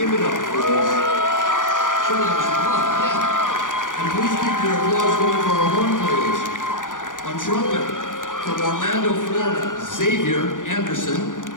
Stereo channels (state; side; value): late; right; 0.88 ms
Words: give it up for us. Show them some love, yeah. And please keep your applause going for our horn players. On trumpet, from Orlando, Florida, Xavier Anderson.